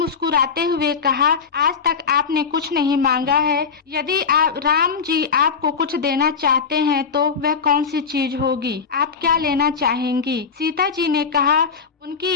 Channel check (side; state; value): right; quieter; 5.8 dB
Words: हुए कहा, आज तक आपने कुछ नहीं मांगा है। यदि राम जी आपको कुछ देना चाहते हैं तो वह कौन सी चीज होगी? आप क्या लेना चाहेंगी? सीता जी ने कहा उनकी